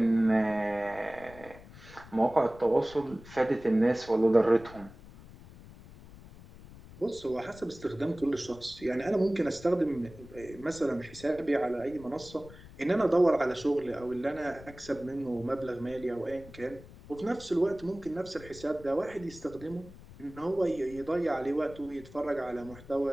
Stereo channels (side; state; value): left; noise; rumble, 19 dB below the sound